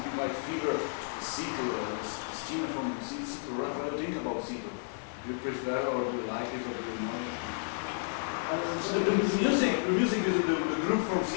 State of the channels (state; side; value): silent; right; digital silence